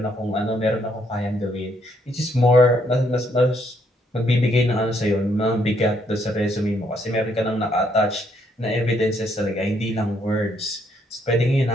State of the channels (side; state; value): both; normal; correlation 0.71